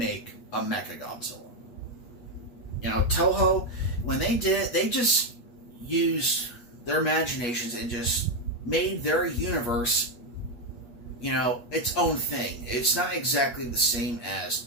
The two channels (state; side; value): late; right; 8.4 ms